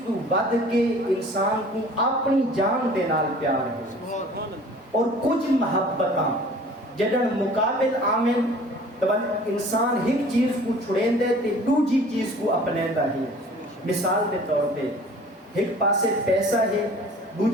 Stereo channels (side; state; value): both; normal; correlation 0.48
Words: کو ود کے انسان کو اپنی جان دے نال پیار ہے۔ اور کچھ محبتاں جدن مقابل آمن تو انسان ایک چیز کو چھڑین دے تے دوسری چیز کو اپنیندا ہے۔ مثال کے طور پہ ایک پاسے پیسہ ہے